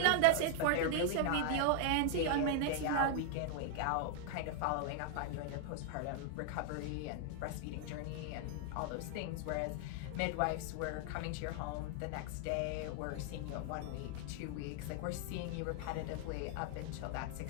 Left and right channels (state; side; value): different; both; correlation 0.00